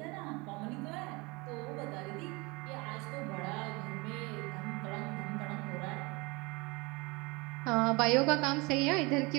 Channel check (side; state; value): left; quieter; 26.0 dB